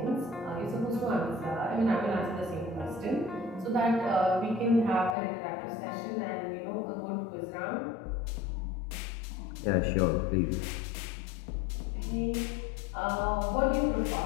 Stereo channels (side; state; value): right; drops out; at 5.2 s